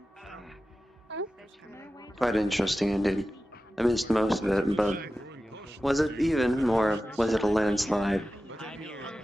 Quite interesting indeed. I missed most of it, but was it even, or was it a landslide?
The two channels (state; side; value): normal; both; correlation 0.94